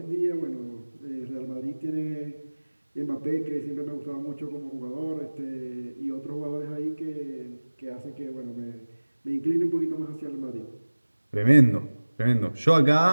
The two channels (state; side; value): inverted; both; correlation -1.00